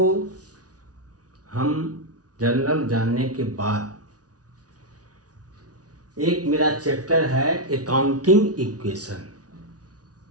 हम जर्नल जानने के बाद एक मेरा चैप्टर है अकाउंटिंग इक्वेशन।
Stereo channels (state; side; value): late; left; 0.68 ms